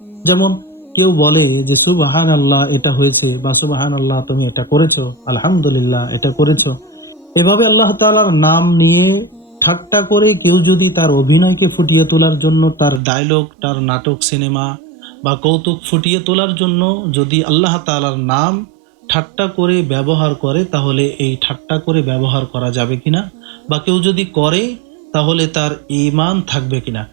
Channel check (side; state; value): left; drops out; at 13.0 s